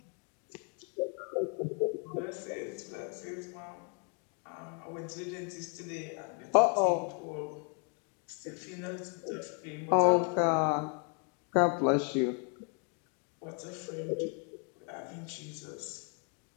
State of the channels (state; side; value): quieter; right; 38.1 dB